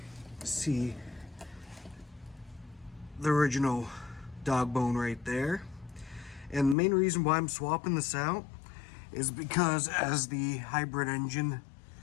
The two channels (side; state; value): right; drops out; at 6.8 s